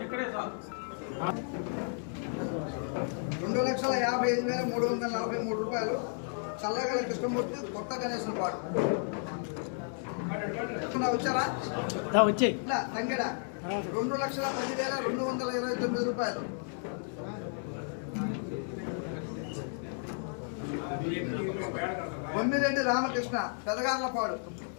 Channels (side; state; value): right; silent; 56 dB below the other